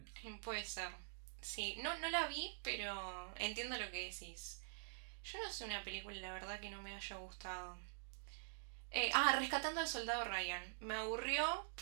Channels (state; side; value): silent; left; digital silence